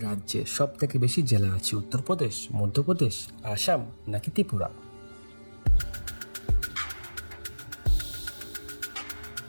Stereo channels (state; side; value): inverted; both; correlation -1.00